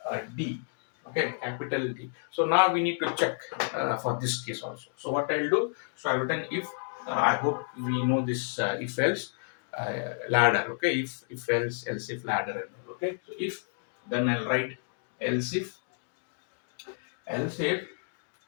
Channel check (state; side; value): silent; right; digital silence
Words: d, okay, capital D, so now we need to check for this case also. So what I'll do, so I've written if, I hope we know this if else ladder. Okay, if else if ladder, and all. Okay, so if, then I'll write else if